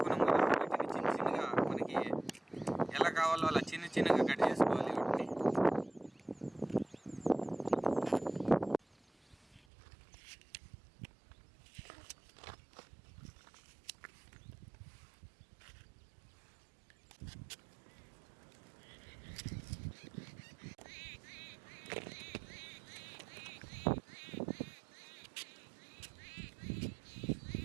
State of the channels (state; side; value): drops out; left; at 9.6 s